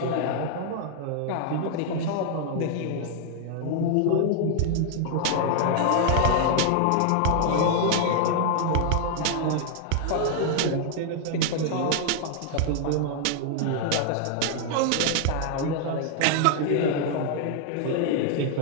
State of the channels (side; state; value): both; different; correlation 0.00